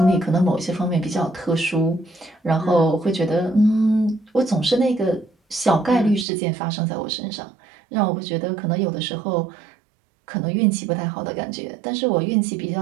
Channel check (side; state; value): left; drops out; at 6.2 s